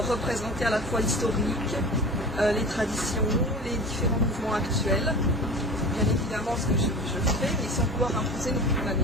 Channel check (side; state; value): both; normal; correlation 0.35